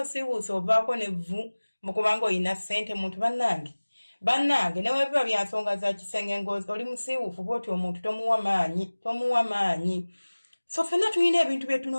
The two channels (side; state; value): both; inverted; correlation -1.00